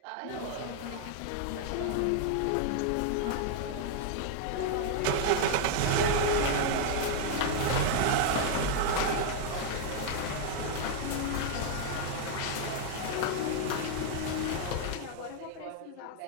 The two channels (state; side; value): different; both; correlation 0.00